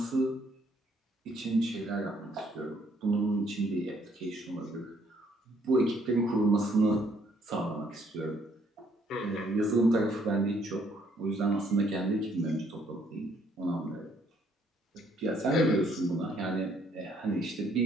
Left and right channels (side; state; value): both; normal; correlation 0.66